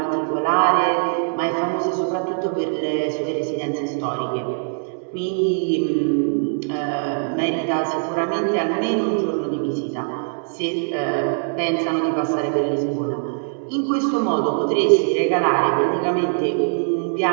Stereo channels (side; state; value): left; silent; digital silence